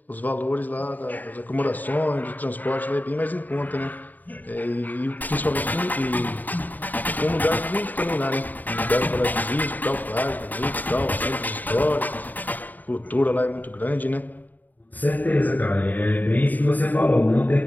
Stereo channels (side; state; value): right; late; 0.084 ms